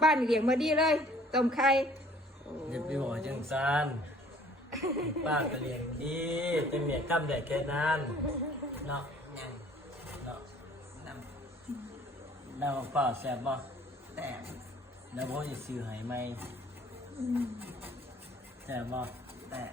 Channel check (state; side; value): normal; both; correlation 0.55